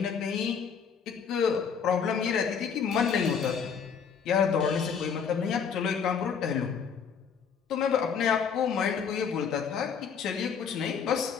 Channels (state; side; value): quieter; right; 6.7 dB